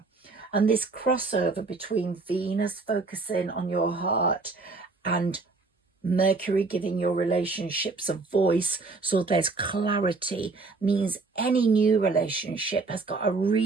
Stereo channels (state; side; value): quieter; left; 3.8 dB